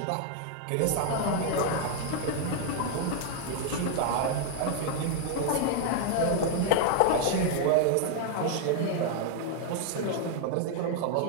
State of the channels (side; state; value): both; different; correlation 0.00